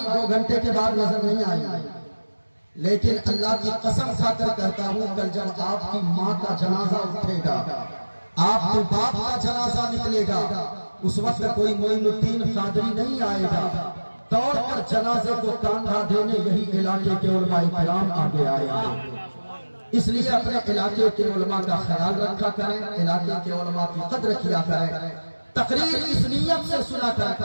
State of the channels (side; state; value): both; inverted; correlation -1.00